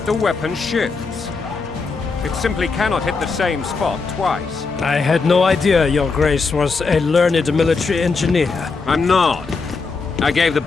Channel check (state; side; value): quieter; right; 4.5 dB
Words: the weapon shifts. It simply cannot hit the same spot twice. I had no idea Your Grace was a learned military engineer. I'm not. I gave the